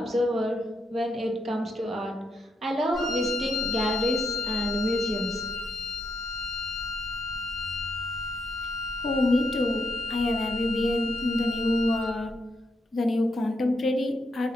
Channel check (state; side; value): normal; both; correlation 0.79